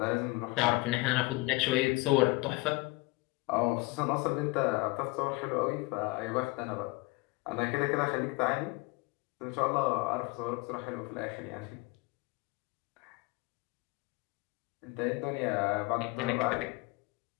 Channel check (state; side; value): quieter; right; 24.0 dB